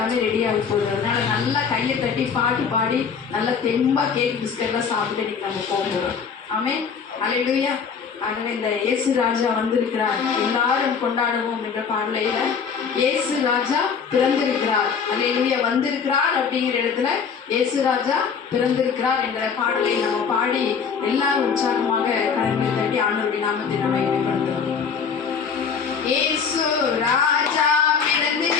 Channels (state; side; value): quieter; right; 6.3 dB